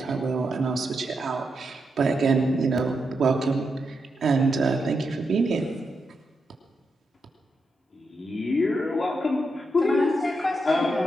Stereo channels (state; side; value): normal; both; correlation 0.84